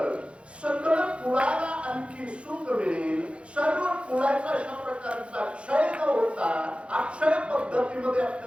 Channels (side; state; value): left; late; 0.060 ms